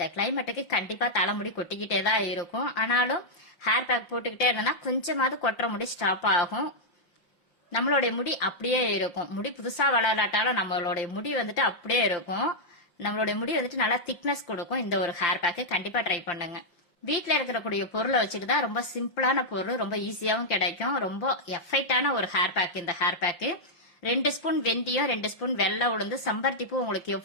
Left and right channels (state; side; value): late; right; 5.8 ms